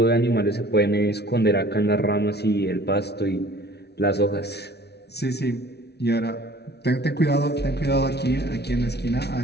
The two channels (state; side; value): late; right; 0.49 ms